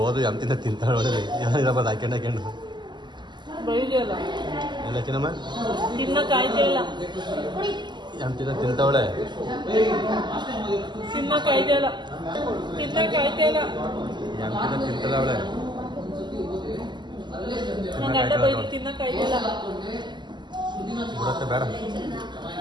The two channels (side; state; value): left; late; 0.21 ms